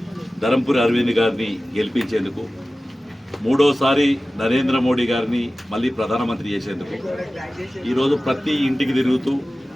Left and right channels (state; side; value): normal; both; correlation 0.96